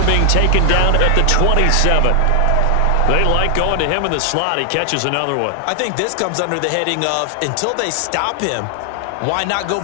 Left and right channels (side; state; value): both; different; correlation 0.00